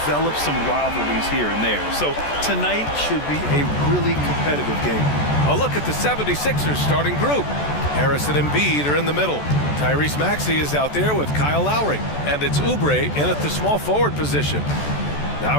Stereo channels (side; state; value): right; late; 14 ms